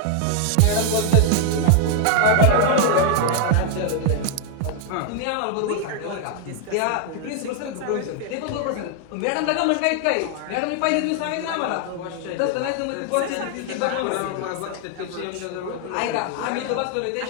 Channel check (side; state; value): both; different; correlation 0.00